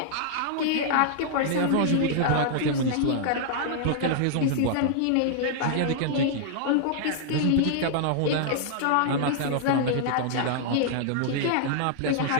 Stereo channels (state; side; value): different; both; correlation -0.01